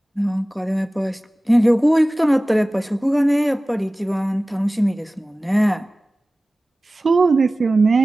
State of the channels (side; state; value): both; normal; correlation 0.97